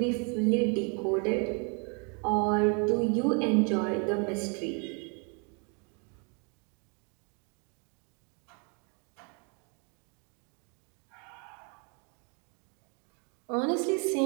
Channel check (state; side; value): quieter; left; 36.7 dB